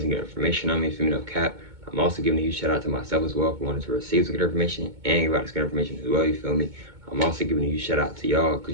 good information on me, for me, no cap. I'm also giving a huge shout out to myself as well for wanting to receive some good information and give out this good information as well, you feel me. I'm also giving a huge shout out to y'all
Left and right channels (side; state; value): left; late; 2.2 ms